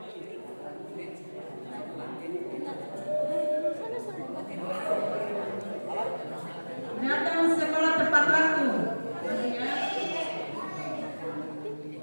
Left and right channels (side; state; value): both; inverted; correlation -1.00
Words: Datang sekolah tepat waktu.